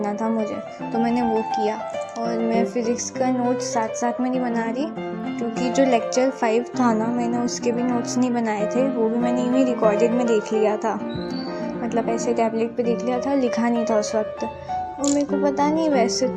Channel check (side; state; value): both; identical; correlation 1.00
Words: था मुझे, तो मैंने वो किया। और मैं फ़िज़िक्स का नोट्स साथ साथ में नहीं बना रही, क्योंकि जो लेक्चर 5 था ना, मैंने उसके भी नोट्स नहीं बनाए थे। वो भी मैंने यूँ ही रिकॉर्डेड में देख लिया था, मतलब ऐसे टैबलेट पे देख लिया था, लिखा नहीं था उस वक्त। और मेरे को पता नहीं, वैसे